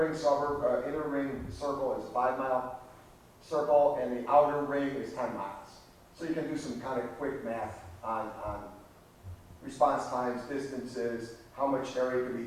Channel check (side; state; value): both; identical; correlation 1.00